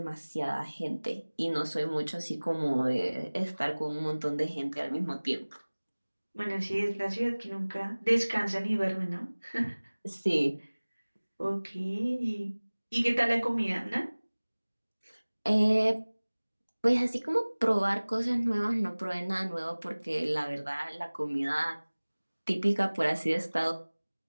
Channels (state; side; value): inverted; both; correlation -1.00